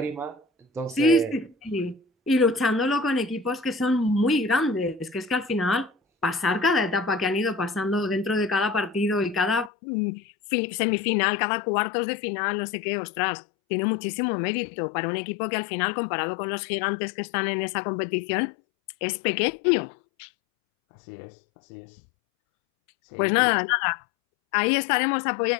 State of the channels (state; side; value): drops out; right; at 9.7 s